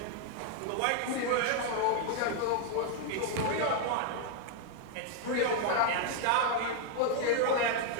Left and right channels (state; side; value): different; both; correlation 0.00